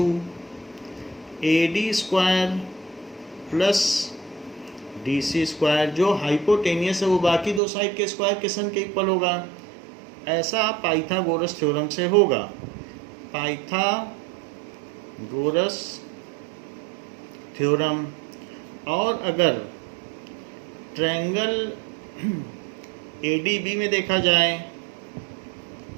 AD square plus DC square. जो हाइपोटेनियस है वो बाकी दो साइड के स्क्वायर के सन के इक्वल होगा, ऐसा पाइथागोरस थ्योरम से होगा। Pythagoras theorem. और अगर ट्रायंगल ADB में देखा जाए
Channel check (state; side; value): drops out; left; at 7.6 s